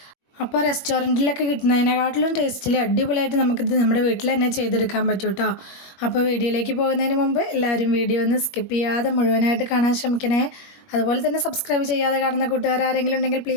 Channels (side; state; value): right; late; 21 ms